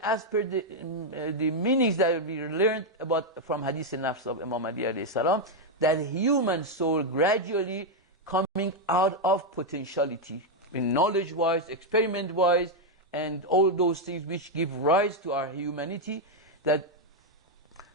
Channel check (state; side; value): normal; both; correlation 0.01